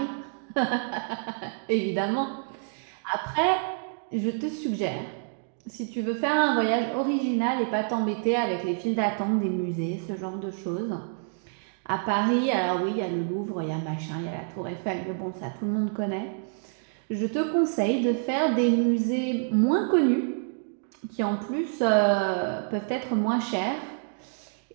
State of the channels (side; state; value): left; silent; digital silence